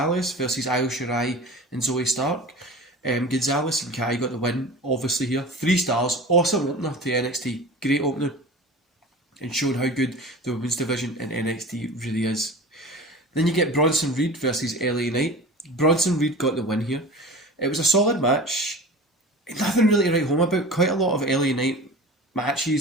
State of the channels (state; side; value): normal; both; correlation 0.36